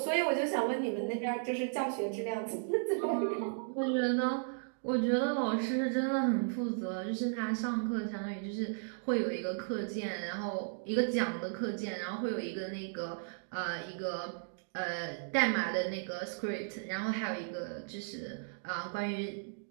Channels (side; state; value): left; silent; digital silence